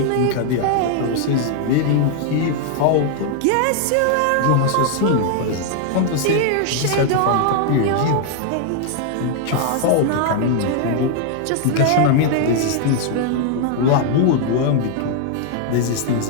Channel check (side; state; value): both; different; correlation 0.00